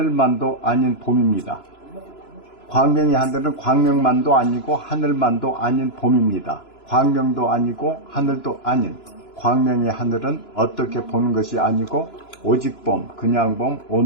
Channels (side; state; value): right; late; 2.9 ms